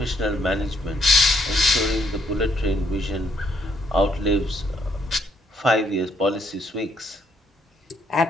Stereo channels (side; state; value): both; normal; correlation 0.70